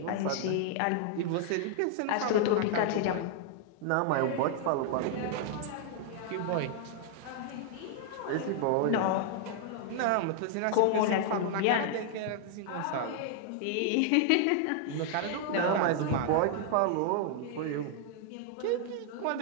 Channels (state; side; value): different; both; correlation 0.00